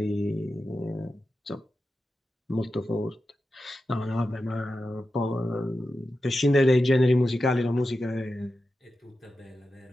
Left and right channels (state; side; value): normal; both; correlation 0.91